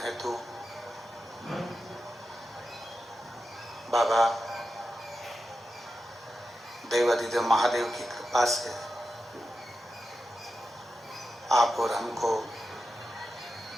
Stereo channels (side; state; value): both; normal; correlation 0.90